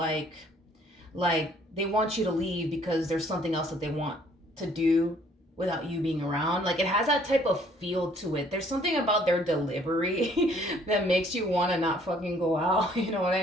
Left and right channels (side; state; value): both; normal; correlation 0.61